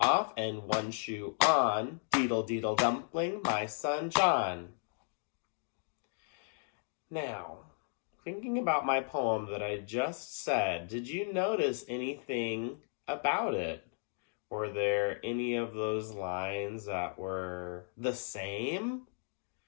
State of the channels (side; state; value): right; silent; digital silence